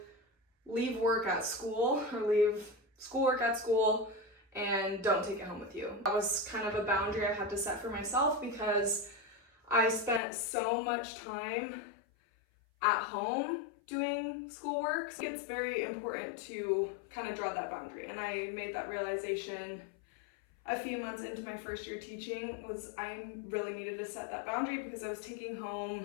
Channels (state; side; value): drops out; right; at 10.2 s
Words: leave work at school or leave schoolwork at school and don't take it home with you. That was kind of a boundary I had to set for myself because I spent so much time at home doing schoolwork. So it's very important to kind of draw that boundary. And I made that realization a few months into my first year teaching was I really needed to set that boundary because I was taking